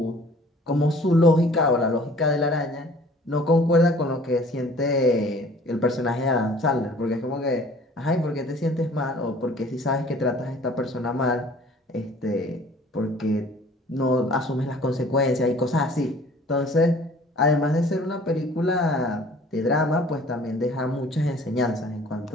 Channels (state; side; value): normal; both; correlation 0.51